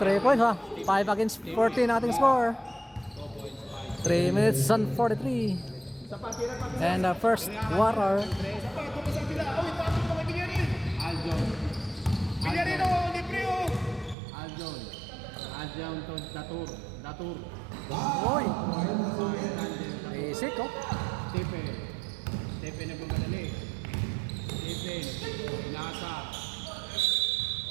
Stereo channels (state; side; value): drops out; left; at 14.2 s